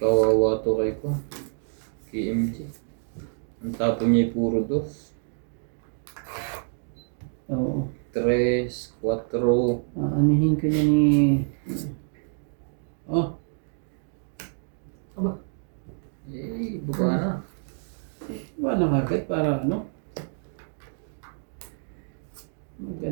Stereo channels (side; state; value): left; silent; digital silence